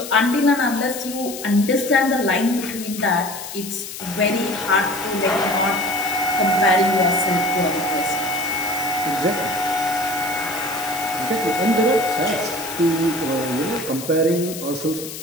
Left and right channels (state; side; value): noise; left; hiss, 10 dB below the sound